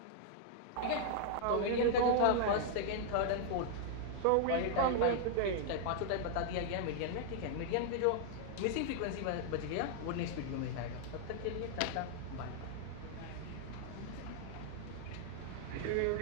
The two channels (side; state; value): both; different; correlation -0.01